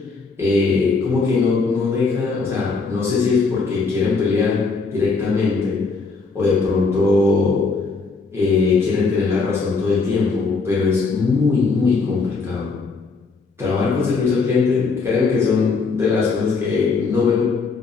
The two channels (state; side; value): quieter; right; 4.4 dB